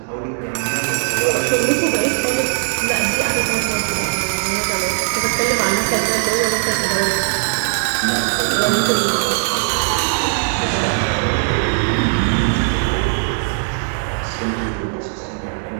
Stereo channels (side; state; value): left; silent; 64 dB below the other